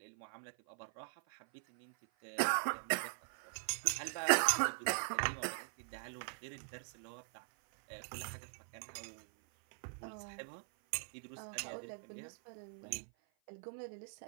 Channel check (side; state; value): left; silent; 50 dB below the other